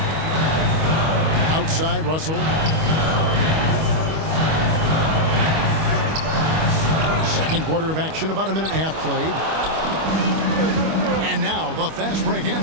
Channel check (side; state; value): left; late; 25 ms